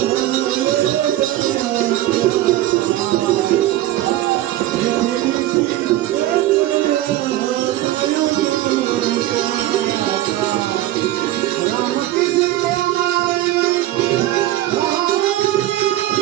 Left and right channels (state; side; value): quieter; left; 14.9 dB